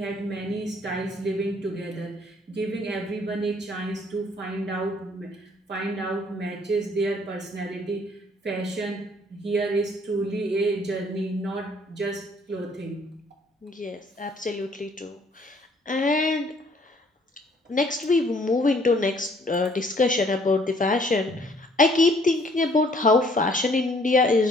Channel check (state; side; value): normal; both; correlation 0.61